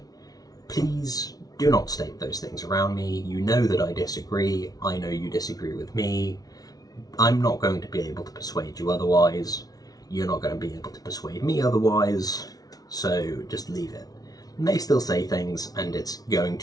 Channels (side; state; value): right; late; 0.18 ms